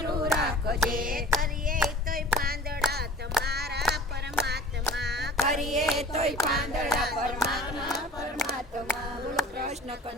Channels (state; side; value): normal; both; correlation 0.42